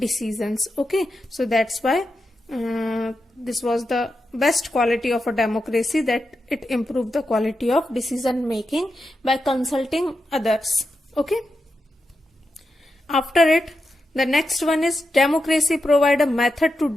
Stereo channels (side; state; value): both; normal; correlation 0.88